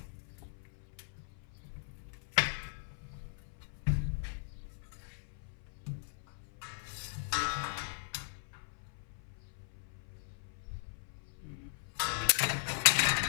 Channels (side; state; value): right; silent; 52 dB below the other